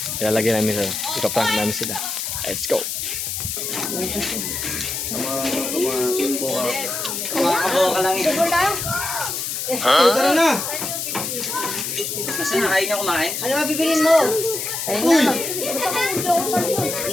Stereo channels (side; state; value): left; noise; hiss, 3 dB below the sound